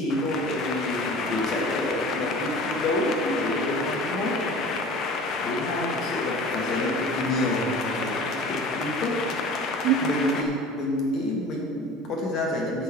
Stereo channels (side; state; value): both; normal; correlation 0.41